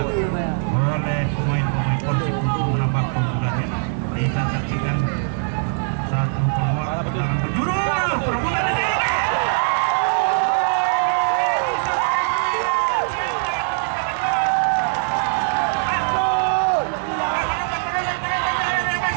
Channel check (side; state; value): left; silent; 65 dB below the other